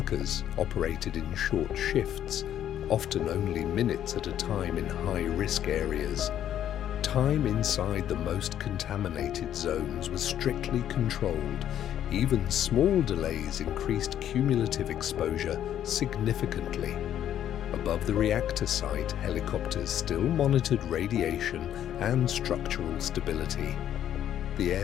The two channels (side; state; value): right; quieter; 10.7 dB